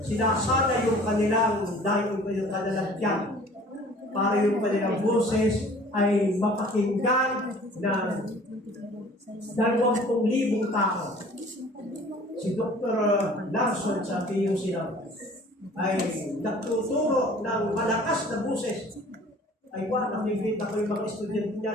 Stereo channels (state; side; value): normal; both; correlation 0.49